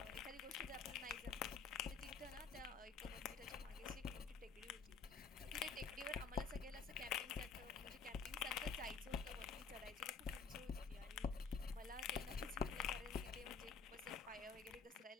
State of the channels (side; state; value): right; quieter; 5.5 dB